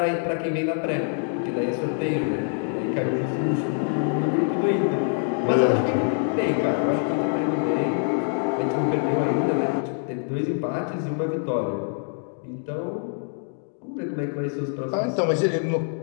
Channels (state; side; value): silent; right; 62 dB below the other